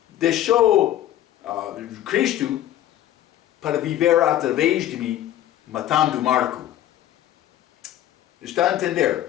deixou Cristo para viver através de mim, matando Marco. Está a entender?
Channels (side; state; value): right; quieter; 12.6 dB